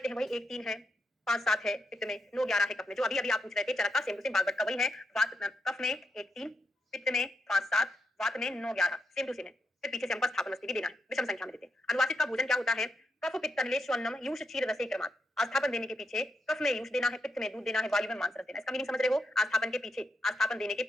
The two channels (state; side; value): normal; both; correlation 0.82